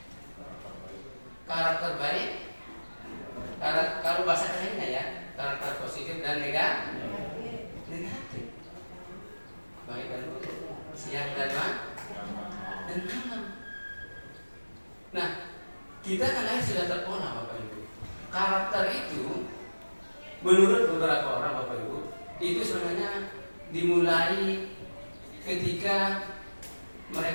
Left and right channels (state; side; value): inverted; both; correlation -1.00